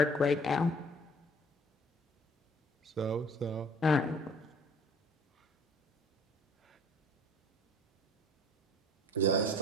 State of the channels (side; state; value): both; normal; correlation 0.52